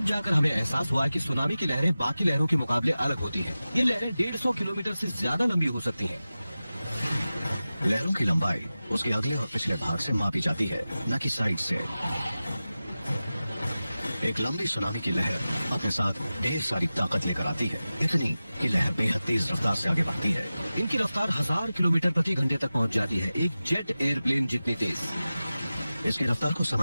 जाकर हमें एहसास हुआ कि सुनामी की लहरें बाकी लहरों के मुकाबले अलग होती हैं। ये लहरें 150 किलोमीटर से ज्यादा लंबी हो सकती हैं। लहरों की लंबाई उसके अगले और पिछले भाग से मापी जाती है, न कि साइड से। एक लंबी सुनामी की लहर अपने साथ ढेर सारी ताकत लेकर आती है, इतनी कि लहर बेहद तेज रफ्तार से आगे बढ़ती है। इनकी रफ्तार 1000 किलोमीटर प्रति घंटे तक पहुंच जाती है, एक जेट एयरप्लेन जितनी तेज। इसकी रफ्तार को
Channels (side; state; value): both; inverted; correlation -0.95